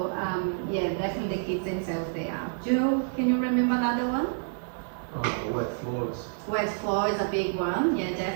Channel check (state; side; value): silent; left; digital silence